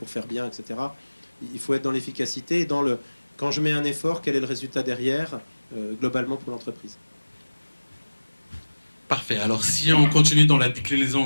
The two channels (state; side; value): inverted; both; correlation -1.00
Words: faire bien, etc. Il faut être dans l'efficacité et dans le quand je mets un effort, quel est le résultat derrière, globalement pour l'entreprise. Parfait. Alors, si on continue dans la déclinaison